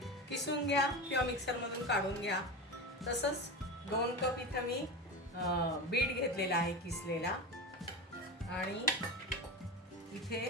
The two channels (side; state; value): both; normal; correlation 0.23